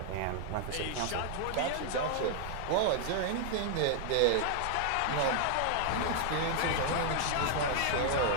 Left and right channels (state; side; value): different; both; correlation 0.00